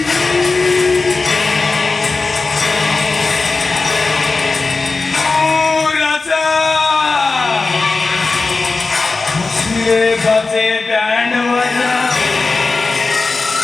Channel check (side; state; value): right; quieter; 3.9 dB